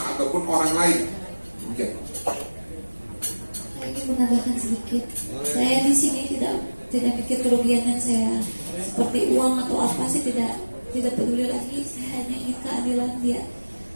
ataupun orang lain. Mungkin. Saya ingin menambahkan sedikit. Saya di sini tidak pikir kerugian saya seperti uang atau apa sih, tidak peduli lagi. Saya hanya ingin keadilan dia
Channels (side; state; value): both; inverted; correlation -1.00